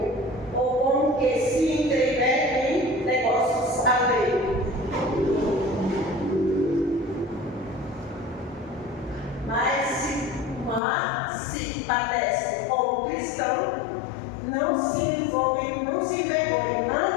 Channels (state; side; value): drops out; right; at 10.8 s